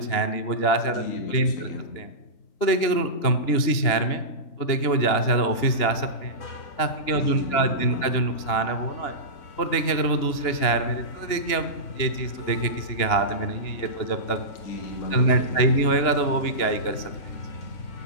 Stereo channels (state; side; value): late; right; 2.9 ms